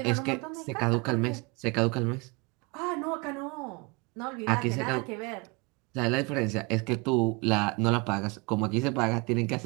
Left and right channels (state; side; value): quieter; left; 27.4 dB